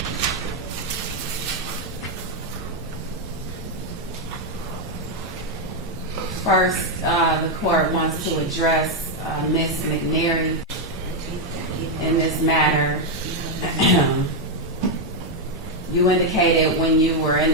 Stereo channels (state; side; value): normal; both; correlation 0.01